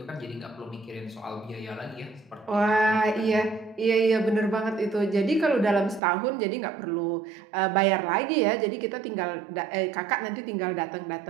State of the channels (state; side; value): drops out; left; at 6.0 s